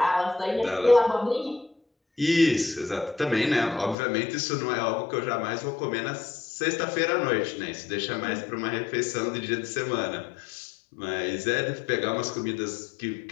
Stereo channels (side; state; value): right; drops out; at 4.0 s